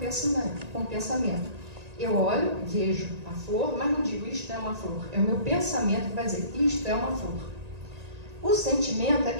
Eu olho, vejo a flor, mas não digo isto é uma flor. É o meu pensamento que vai dizer isto é uma flor. O sentimento é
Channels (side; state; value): left; late; 1.9 ms